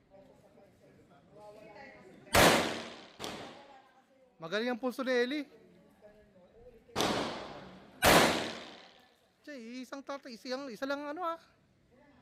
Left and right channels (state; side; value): identical; both; correlation 1.00